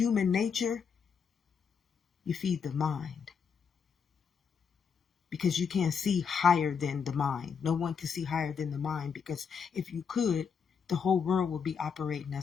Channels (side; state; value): right; quieter; 6.5 dB